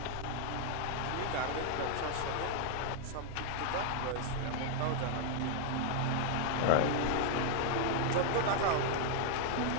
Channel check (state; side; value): different; both; correlation 0.00